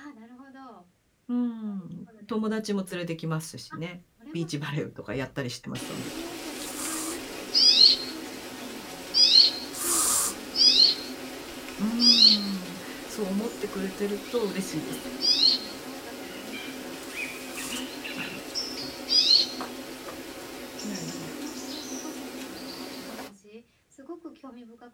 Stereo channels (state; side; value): identical; both; correlation 1.00